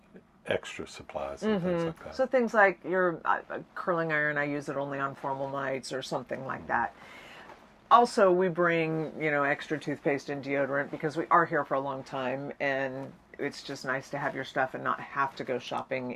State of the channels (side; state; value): both; identical; correlation 1.00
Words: extra supplies and things like that. So things like your curling iron, I use it only on formal nights or something like that. Also, we bring, extra toothpaste and deodorant because we are here for a long time, and it's just nice to have your stuff and not have to go shopping